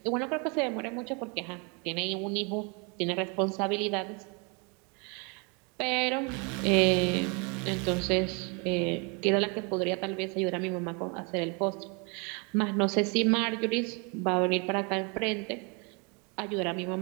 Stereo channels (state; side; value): quieter; left; 32.8 dB